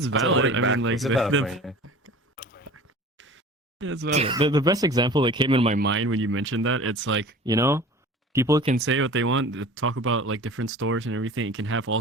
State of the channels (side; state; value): both; normal; correlation 0.41